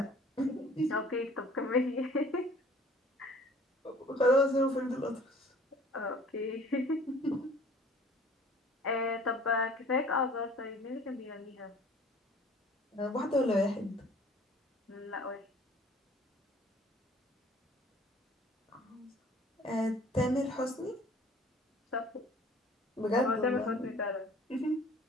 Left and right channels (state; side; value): normal; both; correlation 0.51